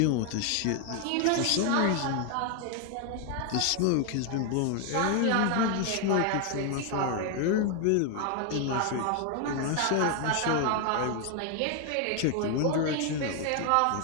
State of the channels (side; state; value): both; different; correlation 0.00